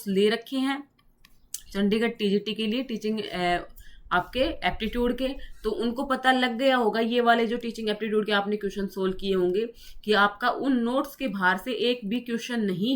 ले रखे हैं, चंडीगढ़ टीजीटी के लिए टीचिंग आपके एप्टीट्यूड के, तो उनको पता लग गया होगा, ये वाले जो टीचिंग एप्टीट्यूड के आपने क्वेश्चन सोल्व किए होंगे, कि आपका उन नोट्स के बाहर से एक भी क्वेश्चन नहीं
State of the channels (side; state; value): both; identical; correlation 1.00